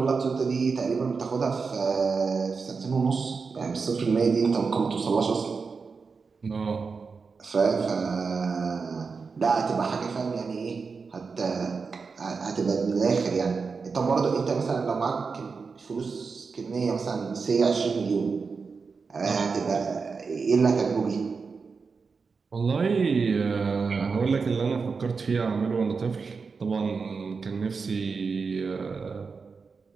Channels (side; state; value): left; quieter; 4.9 dB